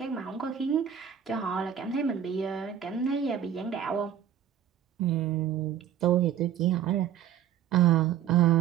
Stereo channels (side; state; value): left; quieter; 9.4 dB